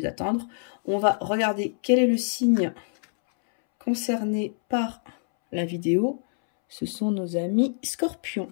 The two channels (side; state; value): right; silent; 61 dB below the other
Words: attendre, on va regarder quel est le signe concerné par la vidéo. Ce sont nos amis scorpions.